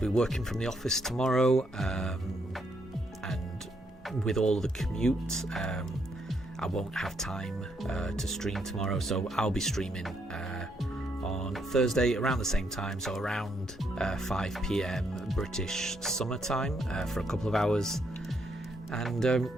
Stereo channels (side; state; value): both; normal; correlation 0.75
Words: working from the office tomorrow, and with all the commute, I won't have time to stream tomorrow. So I'll be streaming on Thursday around the same time, so around 5 p.m. British summertime for a couple of hours, and